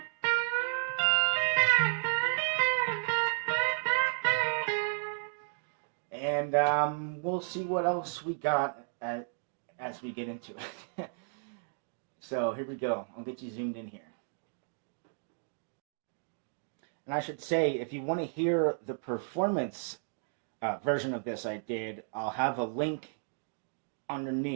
and we'll see what else we got as we get into it. So here we go. I'll get you zoomed in here. And I should say, if you want to hear the performance version of this I did, I'll have a link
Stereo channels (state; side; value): silent; left; digital silence